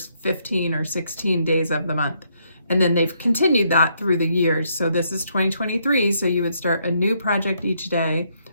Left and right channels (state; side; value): inverted; both; correlation -0.73